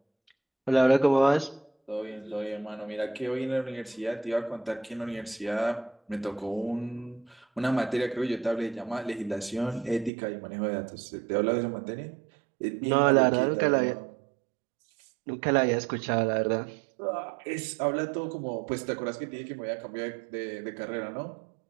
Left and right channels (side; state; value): left; drops out; at 10.1 s